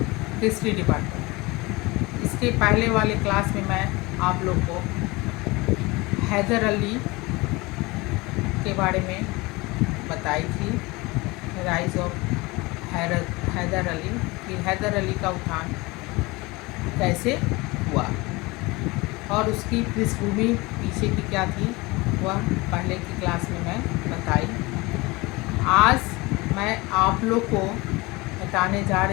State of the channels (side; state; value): right; quieter; 23.4 dB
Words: history department, इसके पहले वाले क्लास में मैं आप लोग को हैदर अली के बारे में बताई थी। राइज ऑफ हैदर अली, कि हैदर अली का उत्थान कैसे हुआ और उसकी पृष्ठभूमि पीछे की क्या थी, वह पहले की क्लास में मैं बताई। आज मैं आप लोग को बताने जा